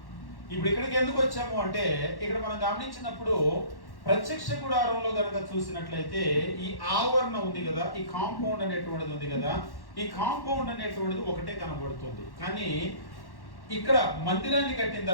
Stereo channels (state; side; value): late; right; 1.1 ms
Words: ఇప్పుడు ఇక్కడికి ఎందుకు వచ్చాము అంటే, ఇక్కడ మనం గమనించినప్పుడు ప్రత్యక్ష గుడారంలో కనుక చూసినట్లయితే ఈ ఆవరణ ఉంది కదా, ఈ కాంపౌండ్ అనేటువంటిది ఉంది కదా, ఈ కాంపౌండ్ అనేటువంటిది ఒకటే కనబడుతుంది. కానీ ఇక్కడ మందిరాన్ని కట్టిన